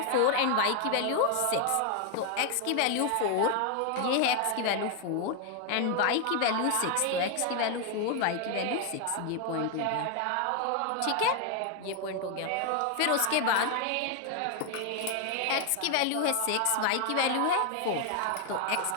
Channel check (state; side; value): different; both; correlation 0.01